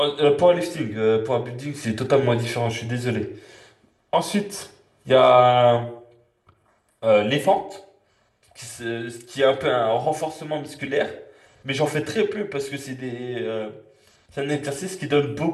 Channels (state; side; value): identical; both; correlation 1.00